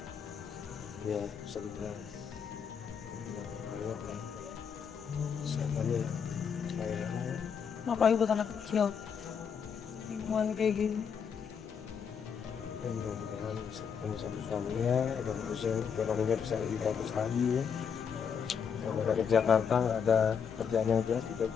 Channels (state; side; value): quieter; right; 6.9 dB